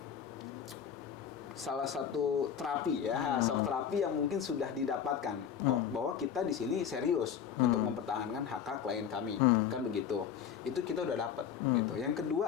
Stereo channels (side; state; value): right; quieter; 8.3 dB